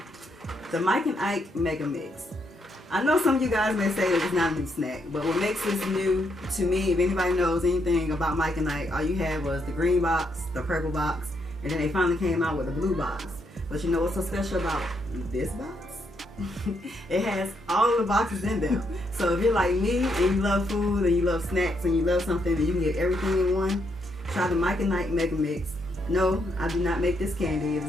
the Mike and Ike Mega Mix. I know some of you guys may say that it's not a new snack, but what makes this new to me, if anybody knows anything about Mike and Ike, all you had was the green box, the purple box, and then they finally came out with the blue box. But you know what's so special about this box? It has all of the boxes in them. So if you're like me and you love food and you love snacks and you love something and you can get everything in one, try the Mike and Ike Mega Mix. No, I do not make this candy. It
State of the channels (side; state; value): both; normal; correlation 0.77